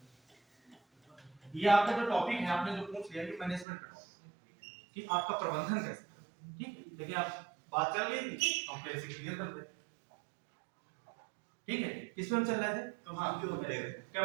ये आपका जो टॉपिक है आपने जो पूछ लिया कि मैनेजमेंट का टॉपिक कि आपका प्रबंधन कैसे करें, ठीक है। लेकिन आप बात चल रही थी हम फिर से क्लियर कर दे, ठीक है। किस में हम चल रहे थे?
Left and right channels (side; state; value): left; drops out; at 3.7 s